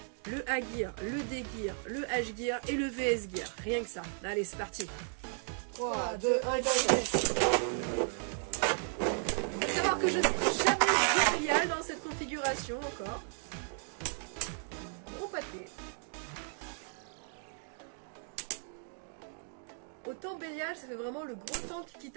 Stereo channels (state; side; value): silent; left; 55 dB below the other